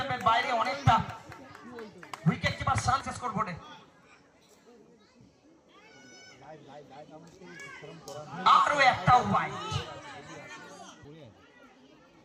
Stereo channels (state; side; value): identical; both; correlation 1.00